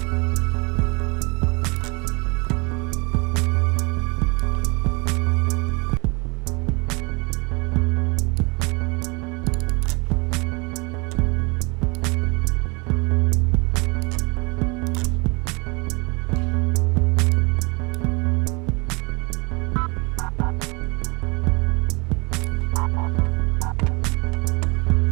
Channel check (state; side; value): quieter; left; 29.3 dB